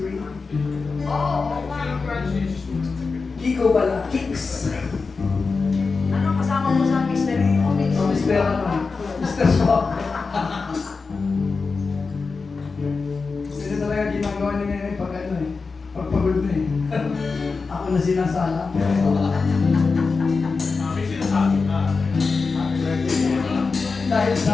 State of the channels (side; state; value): right; quieter; 4.5 dB